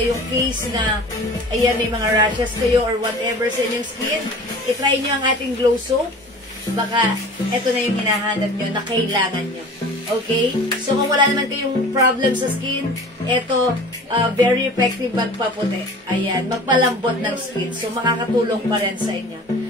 case na, ayan, may mga rashes kayo or whatever sa inyong skin. I-try nyo ang ating Glow Soap. Baka eto na yung hinahanap nyo na kailangan nyo. Okay? So, kung wala naman kayong problem sa skin, eto, very effective magpaputi. Ayan, magpalambot ng skin. So, makakatulong pa rin sa inyo.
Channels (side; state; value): both; normal; correlation 0.41